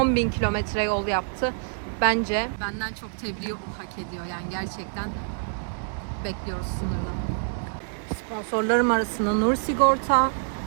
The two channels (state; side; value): silent; left; 61 dB below the other